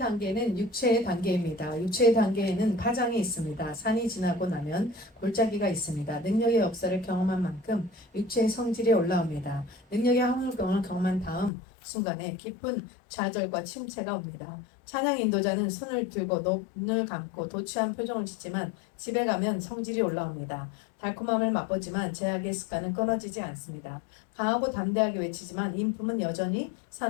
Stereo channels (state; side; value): drops out; right; at 11.5 s